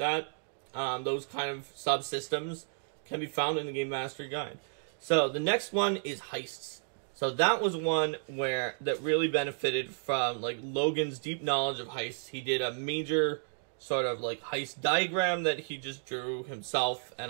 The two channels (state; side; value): silent; left; digital silence